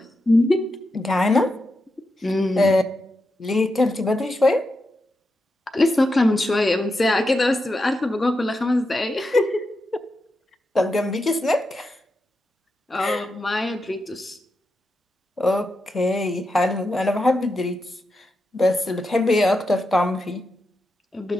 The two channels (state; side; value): normal; both; correlation 0.87